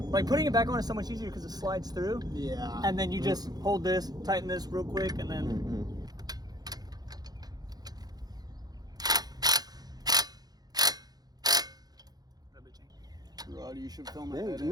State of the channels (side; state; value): left; late; 0.19 ms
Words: like putting it back on is so much easier because it slides through. Yeah. And then you just hold this, tighten this real quick, and then. Rod, you should film it. Yeah,